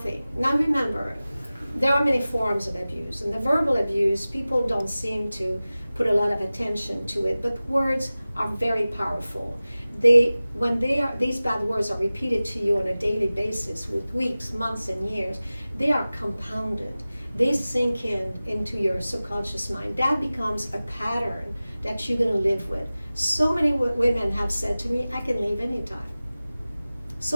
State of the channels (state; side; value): inverted; both; correlation -0.97